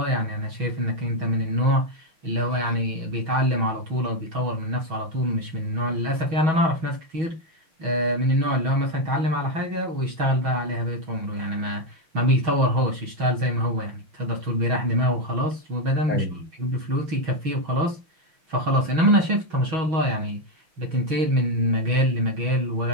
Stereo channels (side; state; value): left; late; 6.2 ms